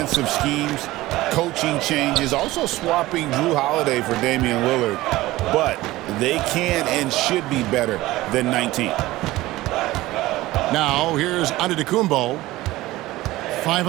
schemes, coaching changes, also swapping Drew Holiday for Damian Lillard. But they can and should be better than 19. Now, here's Antetokounmpo. 5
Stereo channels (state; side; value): quieter; left; 17.8 dB